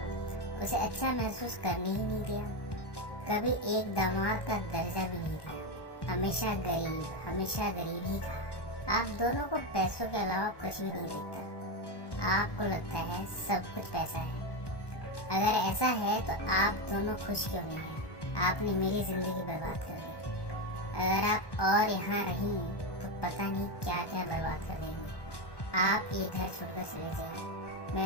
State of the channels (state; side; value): late; right; 1.1 ms